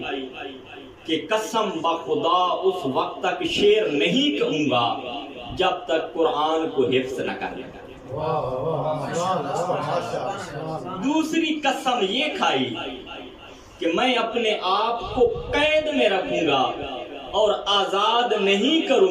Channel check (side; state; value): both; identical; correlation 1.00